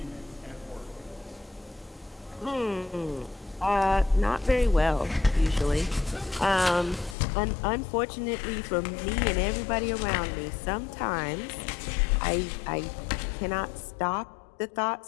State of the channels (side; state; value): right; drops out; at 7.2 s